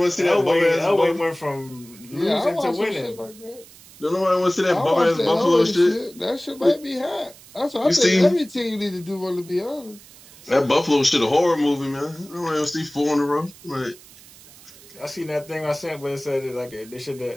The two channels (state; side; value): noise; right; hiss, 22 dB below the sound